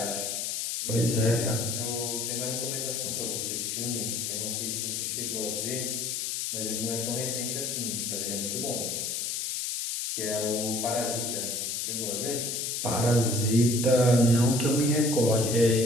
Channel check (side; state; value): left; noise; hiss, 2 dB below the sound